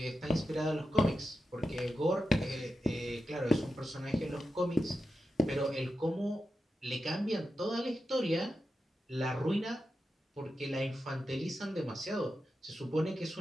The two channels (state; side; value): normal; both; correlation 0.90